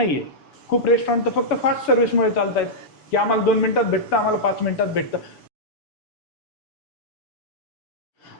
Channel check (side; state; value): right; late; 7.0 ms